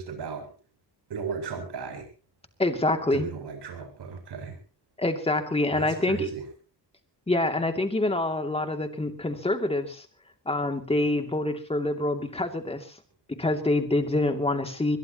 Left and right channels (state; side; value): normal; both; correlation 0.53